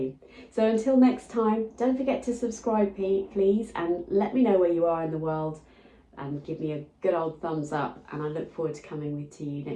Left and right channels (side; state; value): both; identical; correlation 1.00